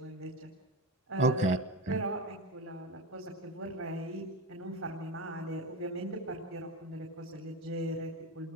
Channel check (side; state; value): both; normal; correlation 0.22